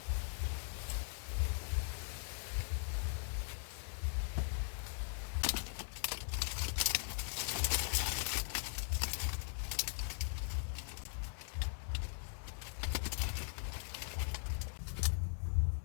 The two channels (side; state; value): right; silent; 51 dB below the other